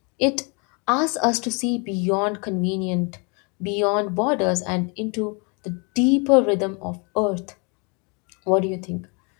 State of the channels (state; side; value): quieter; right; 33.2 dB